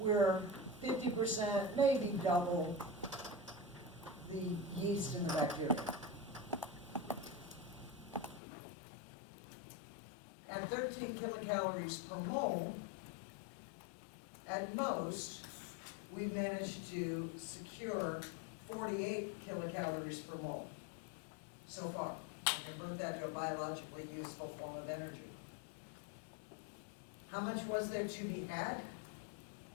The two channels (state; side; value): drops out; right; at 8.4 s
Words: 50%, maybe double the yeast and the bacteria. At 13 kilocalories per mole, at most, we managed to secure 48 kilocalories per mole so far, and convert that to a biologically useful form of energy. How much was there to be had?